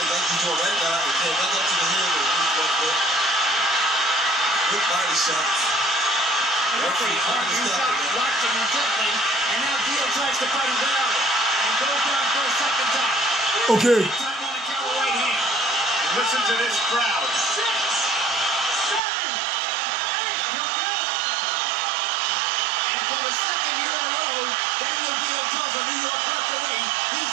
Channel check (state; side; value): drops out; left; at 19.0 s